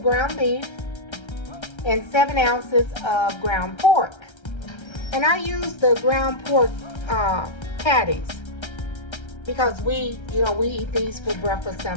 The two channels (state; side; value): late; right; 1.3 ms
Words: ground beef and 7 ounces of ground pork. And I use the ground pork patties because we eat these for breakfast